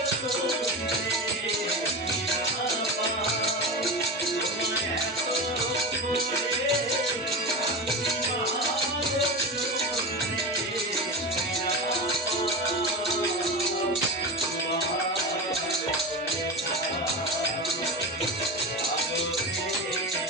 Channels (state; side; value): normal; both; correlation 0.24